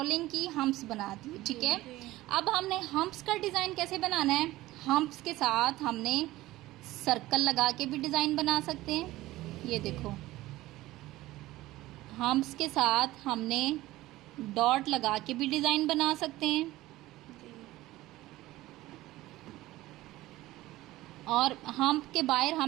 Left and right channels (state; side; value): quieter; left; 17.2 dB